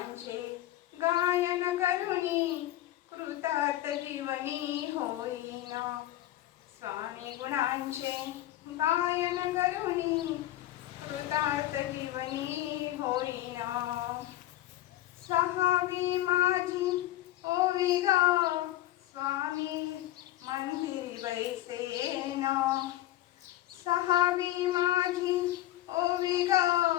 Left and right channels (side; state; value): right; quieter; 14.7 dB